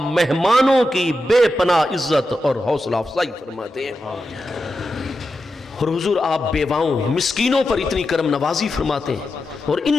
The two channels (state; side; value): normal; both; correlation 0.89